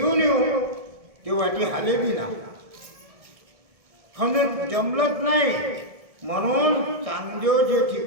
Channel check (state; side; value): late; left; 1.7 ms